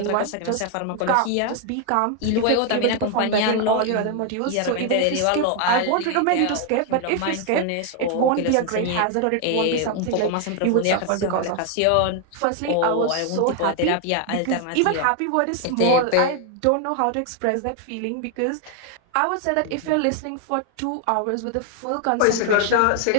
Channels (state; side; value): different; both; correlation 0.00